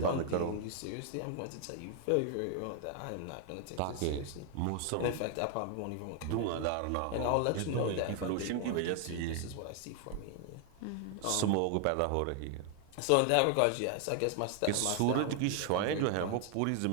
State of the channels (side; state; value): both; different; correlation 0.00